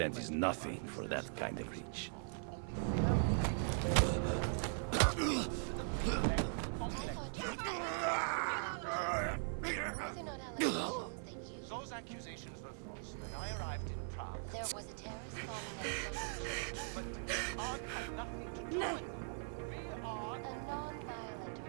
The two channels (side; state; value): left; silent; 51 dB below the other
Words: is nothing for that kind of reach. Those accusations were false. When I arrived in Prague, There was a terrorist bombing at but Prague had nothing to do with it. We are a non-violent